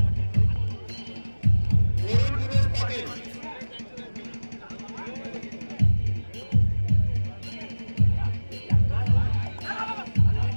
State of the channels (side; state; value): both; inverted; correlation -1.00